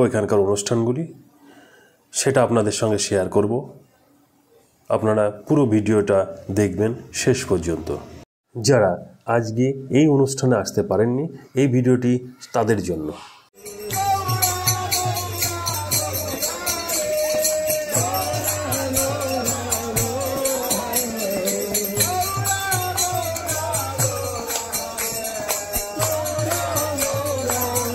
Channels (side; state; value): both; identical; correlation 1.00